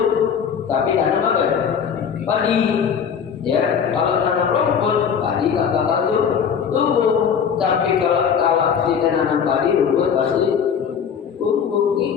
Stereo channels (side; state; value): right; quieter; 7.3 dB